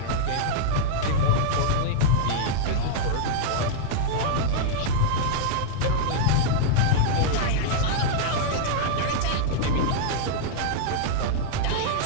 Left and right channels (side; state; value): both; different; correlation -0.02